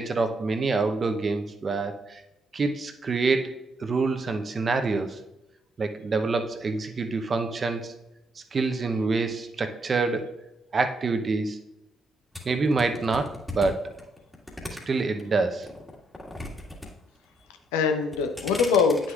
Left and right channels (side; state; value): both; normal; correlation 0.73